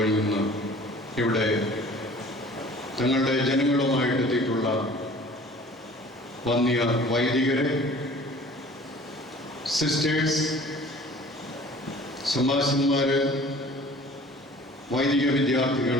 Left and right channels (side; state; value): both; normal; correlation 0.48